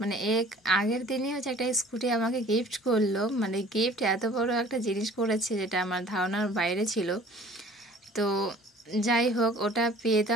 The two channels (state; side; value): normal; both; correlation 0.49